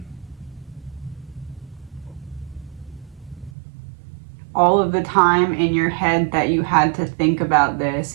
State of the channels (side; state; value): left; drops out; at 3.5 s